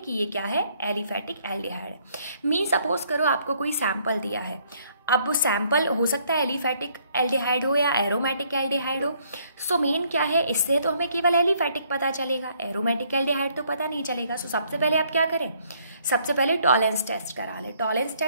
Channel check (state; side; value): inverted; both; correlation -0.67